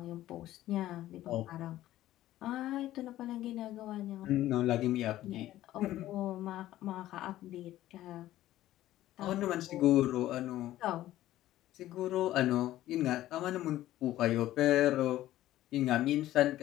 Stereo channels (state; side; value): quieter; right; 14.4 dB